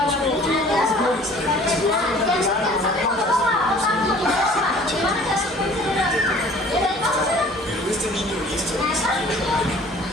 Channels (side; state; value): both; normal; correlation 0.50